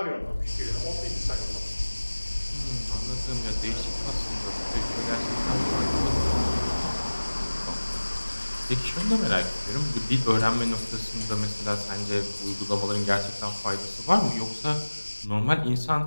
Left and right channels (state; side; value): inverted; both; correlation -1.00